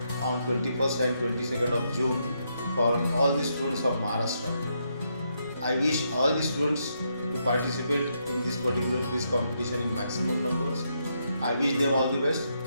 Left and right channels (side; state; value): both; inverted; correlation -0.79